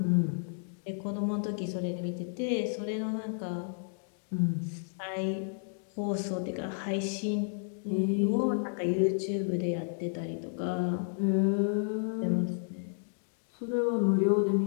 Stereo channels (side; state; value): right; silent; digital silence